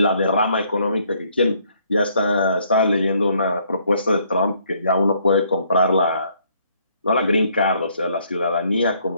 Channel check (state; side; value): inverted; both; correlation -0.67